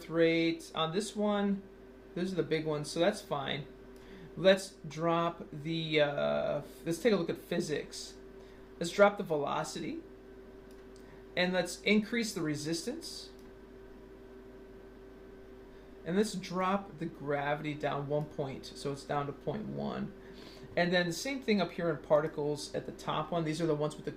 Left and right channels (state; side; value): identical; both; correlation 1.00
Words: rate on this one. Those are the big ones, so that's fine. Let's drop the let's take a look at physics. Let's drop the velocity, and let's increase the resistance. And let's drop the gravity down 1 point, so it's down to 0.1. And then the same thing up here in particles at the top one. These are the ones with the